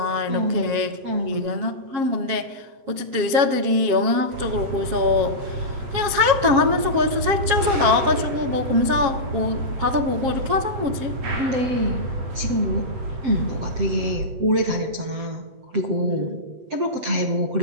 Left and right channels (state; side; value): late; left; 7.4 ms